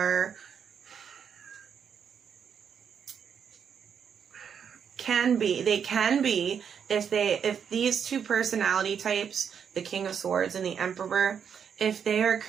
can be if these two personality types, the King of Swords and the Emperor, if they are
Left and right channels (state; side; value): quieter; left; 7.5 dB